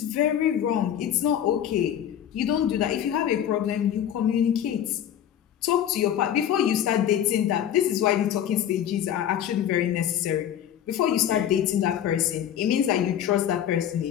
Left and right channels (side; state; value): right; quieter; 10.2 dB